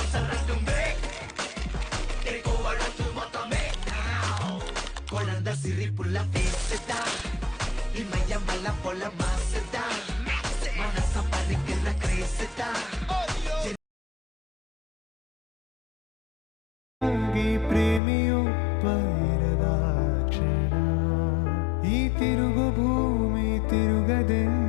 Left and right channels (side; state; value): right; drops out; at 18.0 s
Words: Siripula feseta Imaya mala pola maseta Manasa panikilla creseta Agi ಪ್ರೇಮಿಯೊಬ್ಬರದ ಕ್ಷಣ ಈ ತಿರುಗು ಭೂಮಿ